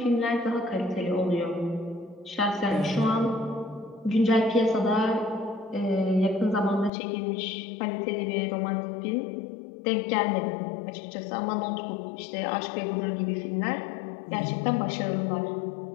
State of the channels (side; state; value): right; drops out; at 6.9 s